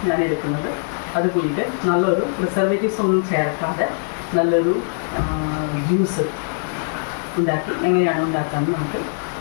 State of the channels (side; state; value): right; silent; digital silence